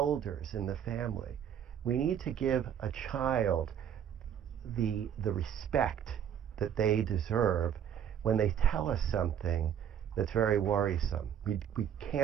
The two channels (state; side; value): quieter; left; 9.1 dB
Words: in the family, we need to give a child the respect that they deserve when they tell us something that's very worrisome. We